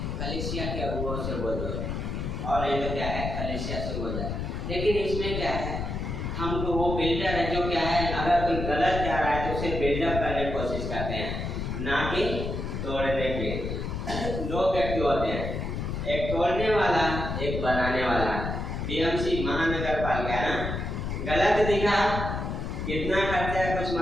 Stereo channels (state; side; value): noise; left; rumble, 3 dB below the sound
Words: कलीसिया के अगुओं से बोलो, और ये तो क्या है, कलीसिया से बोला। लेकिन इसमें क्या है, हम तो वो बिल्डर है जो क्या है, अगर कोई गलत जा रहा है तो उसे बिल्डअप करने की कोशिश करते हैं, ना कि तोड़ने के। 2 व्यक्ति होते हैं, एक तोड़ने वाला, एक बनाने वाला। बीएमसी महानगर पालिका ना, गलत दिखा, कितना खर्चा है कुछ